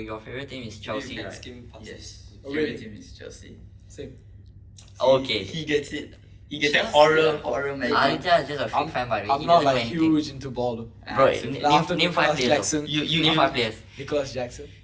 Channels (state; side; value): identical; both; correlation 1.00